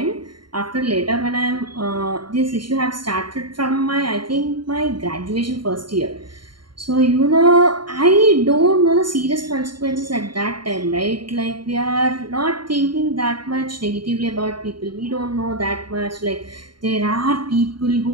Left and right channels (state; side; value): late; left; 0.72 ms